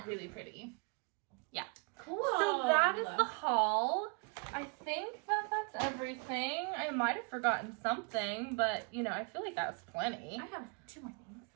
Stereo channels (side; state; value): left; quieter; 34.3 dB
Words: really pretty. Yeah. Cool. So that is the haul. I think that that's everything. I might have forgotten something, but you know, I feel like that was plenty. I have 2 more